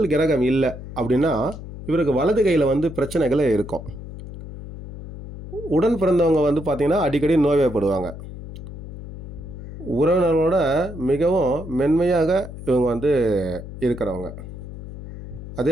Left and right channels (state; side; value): noise; left; hum, 12 dB below the sound